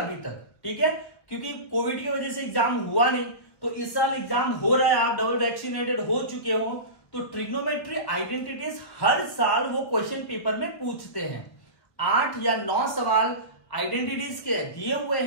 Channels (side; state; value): right; late; 1.5 ms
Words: तक। ठीक है, क्योंकि कोविड की वजह से एग्जाम हुआ नहीं, तो इस साल एग्जाम हो रहा है, आप डबल वैक्सीनेटेड हो चुके हो, तो ट्रिग्नोमेट्री आइडेंटिटीज हर साल वो क्वेश्चन पेपर में पूछते हैं। 8 या 9 सवाल आइडेंटिटीज के दिए हुए